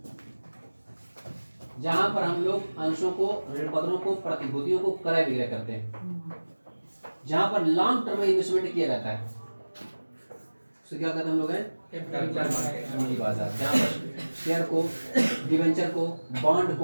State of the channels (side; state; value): both; inverted; correlation -1.00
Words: जहां पर हम लोग अंशों को, ऋण पत्रों को, प्रतिभूतियों को क्रय विक्रय करते हैं, जहां पर लॉन्ग टर्म में इन्वेस्टमेंट किया जाता है, तो क्या कहते हैं हम लोग हैं? पूंजी बाजार। जहां पर शेयर को, डिवेंचर को, बॉन्ड